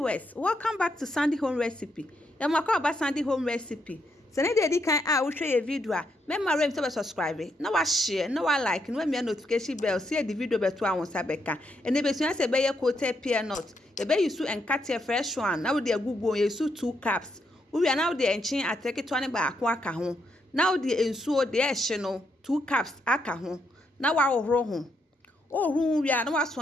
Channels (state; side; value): normal; both; correlation 0.78